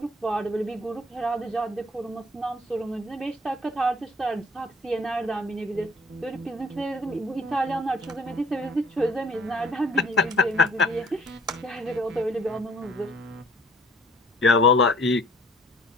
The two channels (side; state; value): both; normal; correlation 0.55